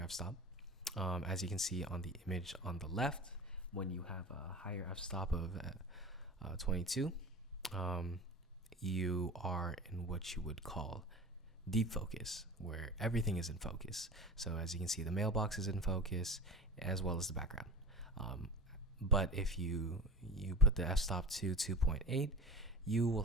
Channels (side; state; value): both; normal; correlation 0.34